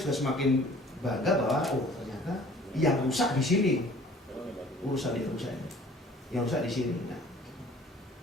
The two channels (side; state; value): both; normal; correlation 0.51